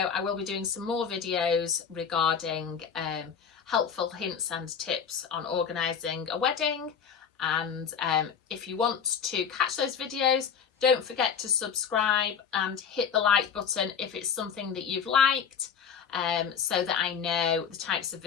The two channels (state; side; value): quieter; right; 7.2 dB